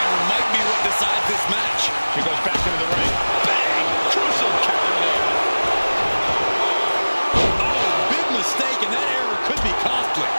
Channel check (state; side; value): inverted; both; correlation -1.00